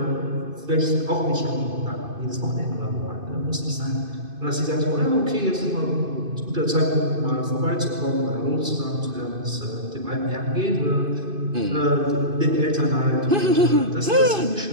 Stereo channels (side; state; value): left; late; 2.5 ms